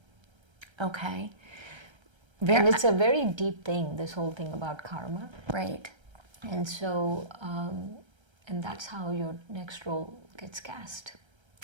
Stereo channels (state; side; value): late; left; 1.3 ms